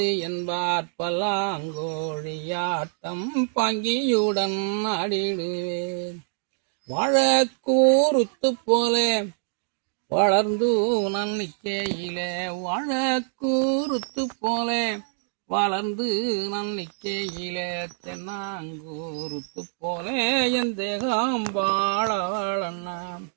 என்பார். பல்லாங்கோழியாட்டம் பாங்கியுடன் ஆடிடுவேன், வாழக்கூறுத்து போல வளர்ந்து நான் நிற்கையிலே, வாழக்கூறுத்து போல வளர்ந்து நான் நிற்கையிலே, தென்னாங்கூறுத்து போல என் தேகம் வாழ வாழண்ணா.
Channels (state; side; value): silent; left; digital silence